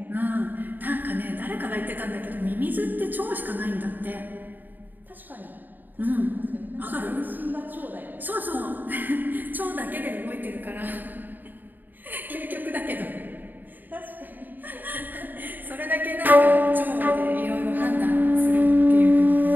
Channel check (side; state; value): left; late; 0.088 ms